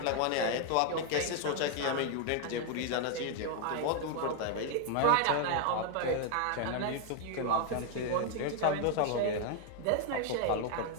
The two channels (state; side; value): different; both; correlation 0.00